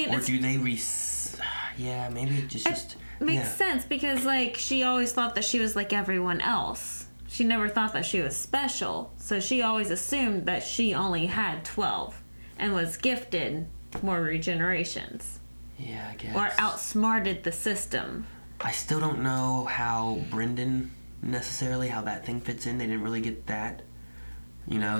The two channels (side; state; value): both; inverted; correlation -1.00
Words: Or do they yeah, maybe it just makes yeah. sense because, like, she always thought that she was like everyone else. She never thought that she was special. So she always assumed that she only had 12 and was gifted more regenerations. Yeah, I guess. Or outsmarted the system. I still don't know how Brendan necessarily, how that thing fits in. They didn't really get that. You know,